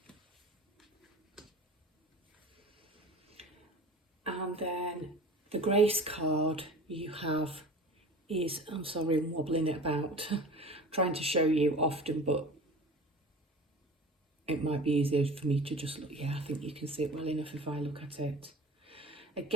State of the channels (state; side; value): normal; both; correlation 0.38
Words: And then the grace card you have is, I'm sorry, I'm wobbling it about, trying to show you often, but it might be easier for me to just look. Yeah, I think you can see it well enough if I look at it.